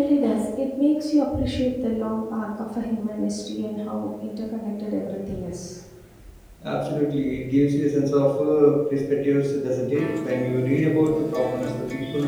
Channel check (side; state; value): both; identical; correlation 1.00